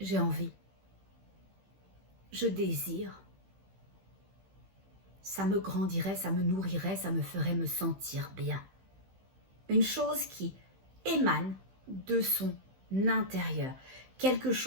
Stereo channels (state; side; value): late; left; 15 ms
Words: envie, je désire. Ça me grandirait, ça me nourrirait, ça me ferait me sentir bien. Une chose qui émane de son intérieur. Quelque